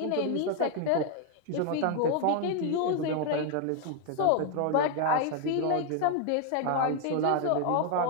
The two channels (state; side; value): different; both; correlation 0.01